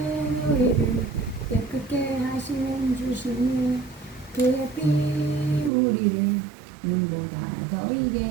우리를 깨끗게 하시는 주시니 그의 피 우리를 눈보다 더 이게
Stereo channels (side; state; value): left; drops out; at 5.7 s